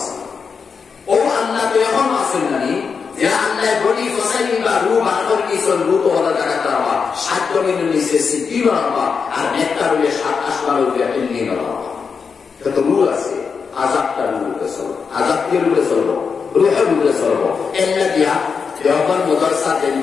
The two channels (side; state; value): right; quieter; 5.7 dB